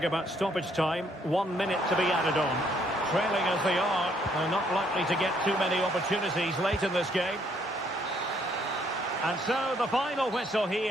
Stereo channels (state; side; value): normal; both; correlation 0.68